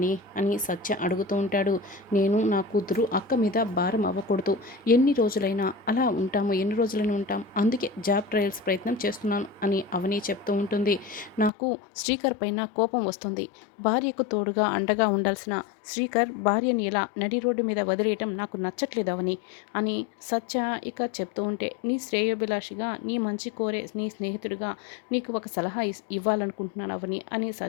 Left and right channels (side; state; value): right; drops out; at 11.5 s